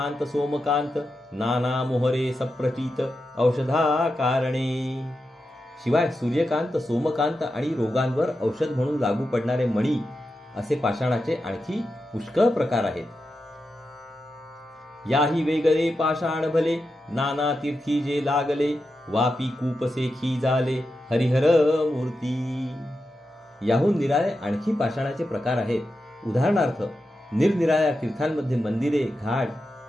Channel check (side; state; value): both; normal; correlation 0.89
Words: सोमकांत, नाना मोहरे सप्रचित, औषधा कारणे. शिवाय सूर्यकांत सोमकांत आणि रोगांवर औषध म्हणून लागू पडणारे मणी असे पाषाणाचे आणखी पुष्कळ प्रकार आहेत. याही वेगळे पाषाण भले, नाना तीर्थी जे लागले, वापी कूपसेखी झाले, हरिहर मूर्ती. याहून निराळे आणखी पाषाणाचे प्रकार आहेत. उदाहरणार्थ, निरनिराळ्या तीर्थांमध्ये मंदिरे, घाट,